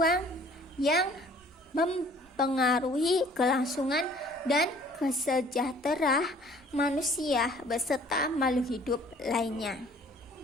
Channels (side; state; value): both; normal; correlation 0.54